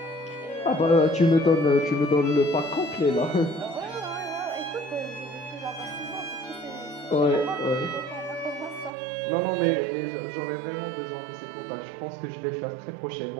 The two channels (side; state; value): left; drops out; at 8.9 s